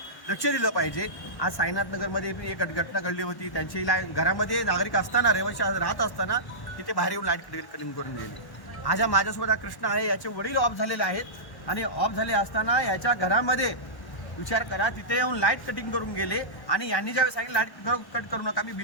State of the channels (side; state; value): right; late; 1.1 ms